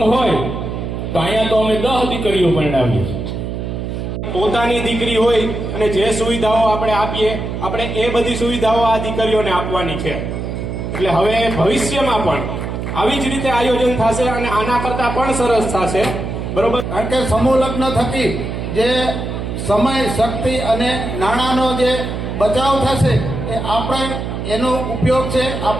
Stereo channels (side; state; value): right; noise; hum, 5 dB below the sound